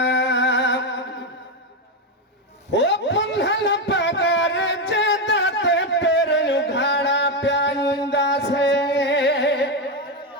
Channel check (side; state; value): both; normal; correlation 0.09